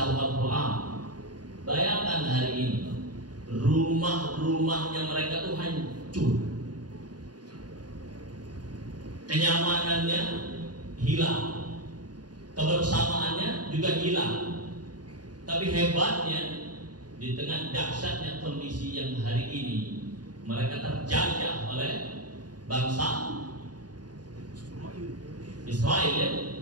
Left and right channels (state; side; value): late; left; 0.69 ms